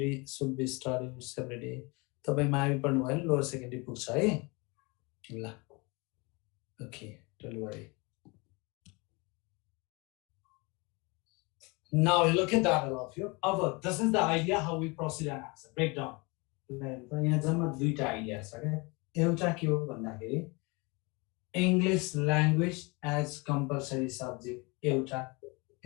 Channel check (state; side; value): quieter; right; 27.9 dB